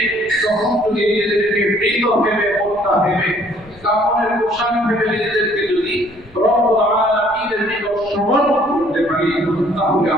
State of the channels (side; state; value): left; noise; rumble, 25 dB below the sound